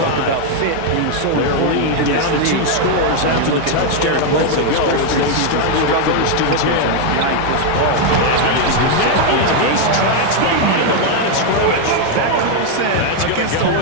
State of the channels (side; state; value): both; different; correlation 0.01